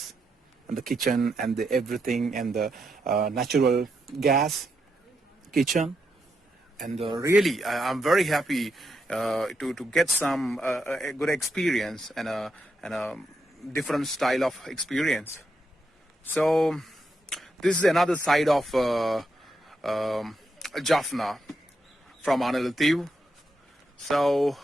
and the kitchen and the everything, and the natural gas kitchen. And really I'm very happy to get some a good experience and a different style of experience. So this is another side of Jaffna from Annalai. So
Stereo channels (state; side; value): normal; both; correlation 0.82